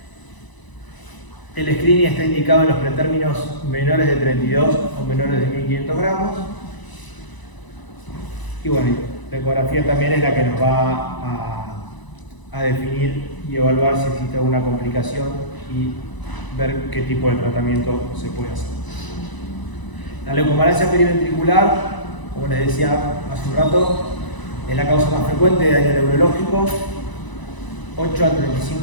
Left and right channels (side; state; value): right; late; 1.0 ms